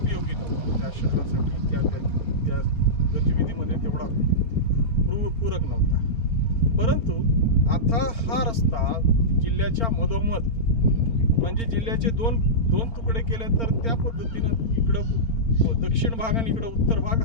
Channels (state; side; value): late; right; 4.4 ms